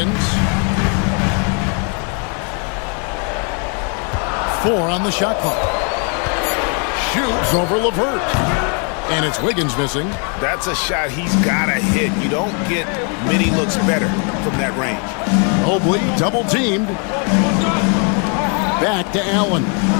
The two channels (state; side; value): quieter; right; 38.4 dB